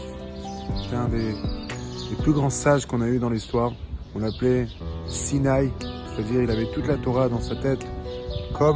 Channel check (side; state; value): both; identical; correlation 1.00